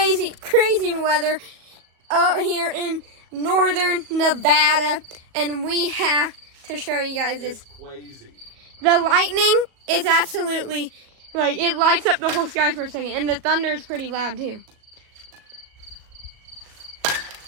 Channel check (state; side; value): late; left; 38 ms